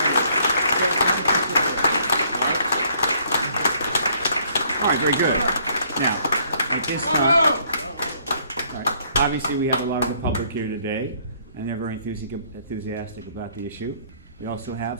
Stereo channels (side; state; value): both; inverted; correlation -0.64